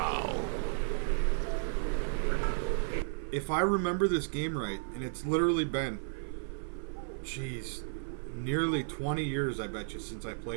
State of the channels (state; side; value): silent; left; 55 dB below the other